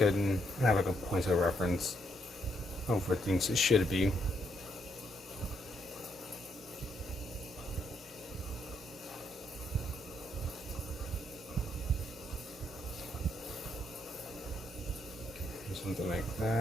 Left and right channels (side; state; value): both; normal; correlation 0.75